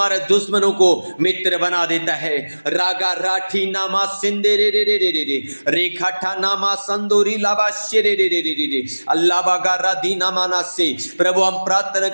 दुश्मनों को मित्र बना देता है। रागा राठी नामा सिंदे रे रे रे रे रे रे रेखाठा नामा संदोरी लाबा शे रे रे रे रे रे अल्लाह बागा राधी नामाना से। प्रभु हम प्रार्थना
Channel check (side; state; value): both; inverted; correlation -1.00